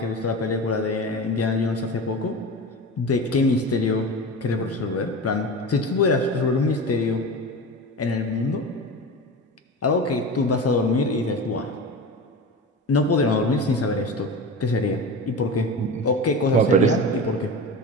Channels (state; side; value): normal; both; correlation 0.28